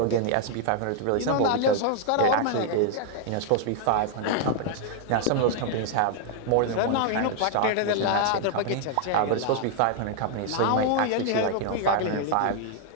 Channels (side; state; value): both; different; correlation 0.00